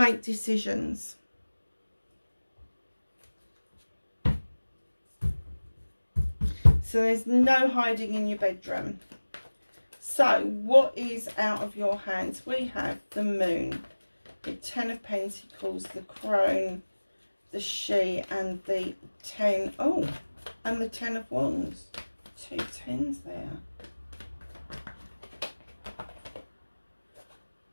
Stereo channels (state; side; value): inverted; both; correlation -1.00